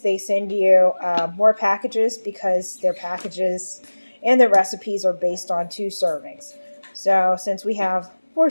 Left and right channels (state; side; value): inverted; both; correlation -1.00